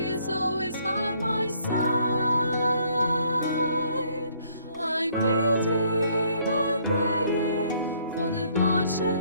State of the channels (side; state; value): both; inverted; correlation -0.65